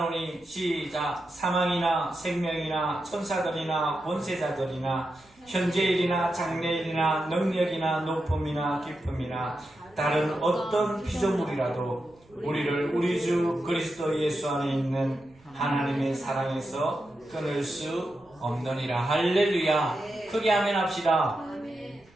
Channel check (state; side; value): noise; right; rumble, 30 dB below the sound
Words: 시작. 사망이나 생명이나 천사들이나 권세자들이나 현재일이나 장래일이나 능력이나 높음이나 깊음이나 다른 어떤 피조물이라도 우리를 우리 주 그리스도 예수 안에 있는 하나님의 사랑에서 끊을 수 없느니라. 할렐루야. 크게 아멘 합시다.